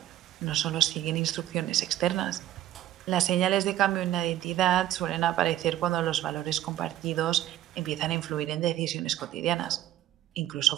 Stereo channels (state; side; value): quieter; left; 13.2 dB